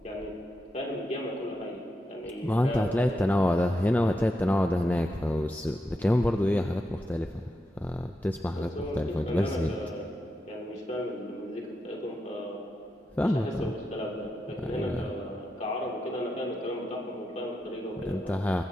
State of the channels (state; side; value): normal; both; correlation 0.86